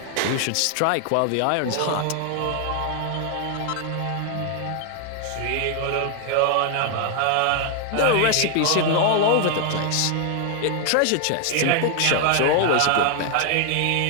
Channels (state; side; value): different; both; correlation 0.00